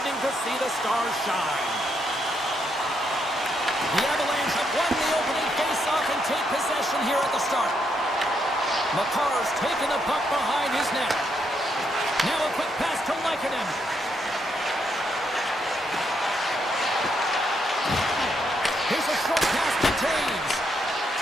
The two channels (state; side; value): normal; both; correlation 0.77